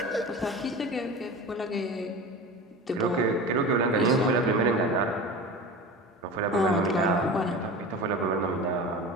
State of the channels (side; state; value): both; normal; correlation 0.32